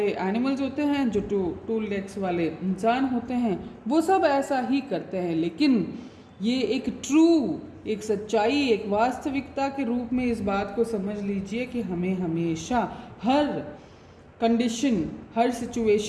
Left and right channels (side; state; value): both; identical; correlation 1.00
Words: एनिमल्स होते हैं, जो 2 legs वाले इंसान होते हैं, वो सब ऐसा ही करते हैं। लेकिन ये एक ट्रू, एक सच्चाई, एक वास्तविकता के रूप में इस बात को समझ लीजिए कि हमें हमेशा हर कंडीशन, हर